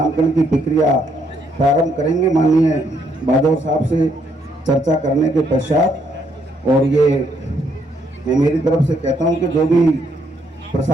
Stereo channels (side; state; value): both; normal; correlation 0.72